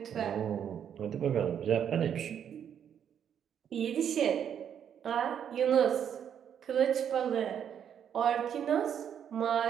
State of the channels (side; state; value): left; quieter; 8.7 dB